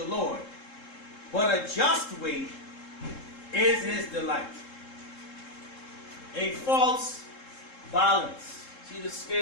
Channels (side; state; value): right; late; 3.7 ms